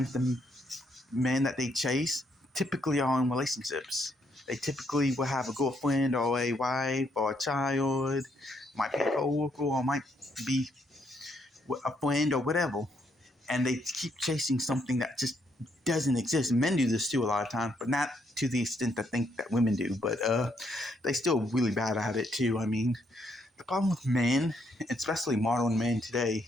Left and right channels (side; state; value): both; normal; correlation 0.74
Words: men that they chase typically are in relationships. They typically will have a girlfriend or a wife or a child, might be a coworker or might be a friend or whatever, and they keep chasing something that just doesn't exist. Men do this too a lot of times, but not to the extent I think that women do. But they still really bad at it too. I mean, the problem with men, especially modern men today,